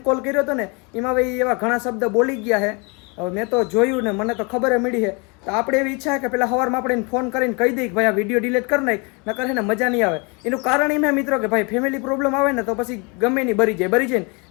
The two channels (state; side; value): quieter; right; 31.1 dB